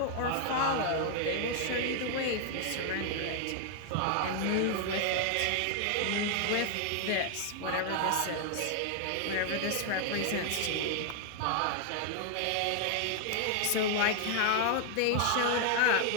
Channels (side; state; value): both; different; correlation 0.00